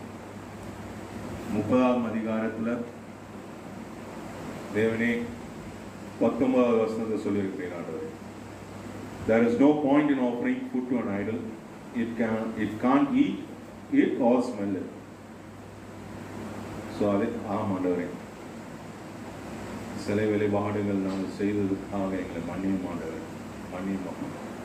30ஆம் அதிகாரத்தில் தேவனே 19வது வசனத்தை சொல்லியிருக்கிறீர்கள் ஆண்டவரே. There is no point in offering food to an idol. It can't eat it or smell it. So அது ஆண்டவரே, சிலை வழிபாடுகள் நாங்கள் செய்ததுக்காக எங்களை மன்னியும் ஆண்டவரே, மன்னியும்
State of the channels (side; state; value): both; identical; correlation 1.00